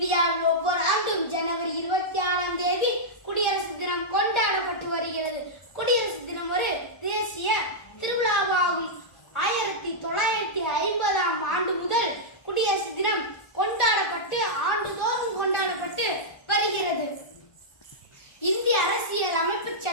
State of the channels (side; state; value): right; late; 1.4 ms